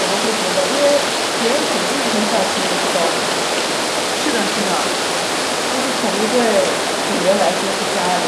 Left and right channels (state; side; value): identical; both; correlation 1.00